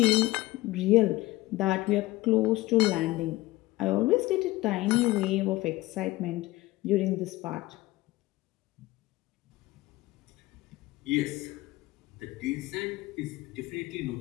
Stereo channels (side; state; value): right; quieter; 19.0 dB